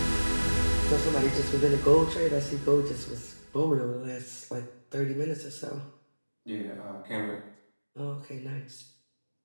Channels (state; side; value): inverted; both; correlation -1.00